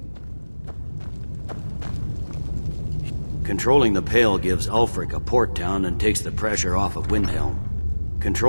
Controlling the Pale gives Ulfric a port town and takes the pressure off of Windhelm.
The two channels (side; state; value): both; inverted; correlation -1.00